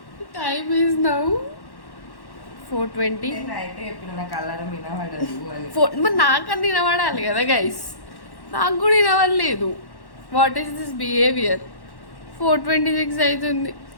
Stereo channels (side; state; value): right; late; 1.1 ms